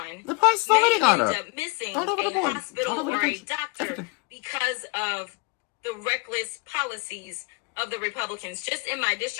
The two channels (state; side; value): quieter; right; 30.6 dB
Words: the price is already gone up. Missing a hospital or a doctor because of the reckless policies of the Republicans. Just in my